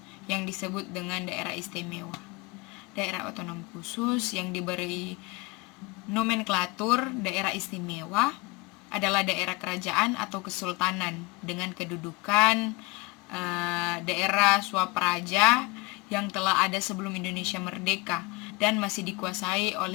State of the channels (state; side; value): quieter; right; 24.7 dB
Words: yang disebut dengan daerah istimewa. Daerah otonom khusus yang diberi nomenklatur daerah istimewa adalah daerah kerajaan atau kesultanan dengan kedudukan daerah swapraja yang telah ada sebelum Indonesia merdeka dan masih dikuasai